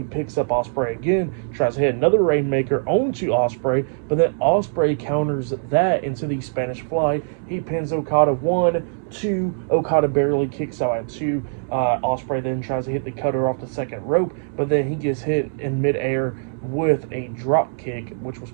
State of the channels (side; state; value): left; silent; digital silence